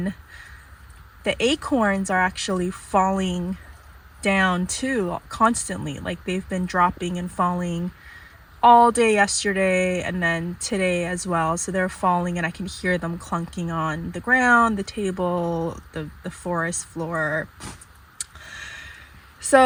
the acorns are actually falling down too, constantly. Like, they've been dropping and falling all day yesterday and then today as well. So they're falling and I can hear them clunking on the ground, the table, the forest floor.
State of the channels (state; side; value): identical; both; correlation 1.00